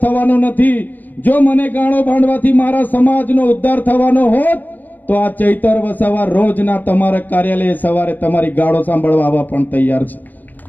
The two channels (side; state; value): right; late; 0.085 ms